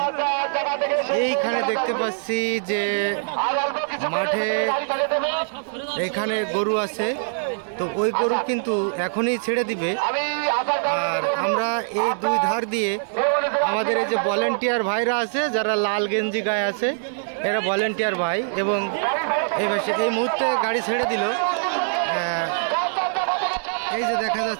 এইখানে দেখতে পাচ্ছি যে মাঠে এখানে গরু আছে, তো ওই গরু কিন্তু এখনই ছেড়ে দিবে। আর আমরা এই দুই ধার দিয়ে আমাদের এই যে ভলেন্টিয়ার ভাইরা আছে, যারা লাল গেঞ্জি গায়ে আছে, এরা ভলেন্টিয়ার ভাই। এবং এই মুহূর্তে গাড়ি ছেড়ে দিল। এই যে দেখা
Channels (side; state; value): left; silent; digital silence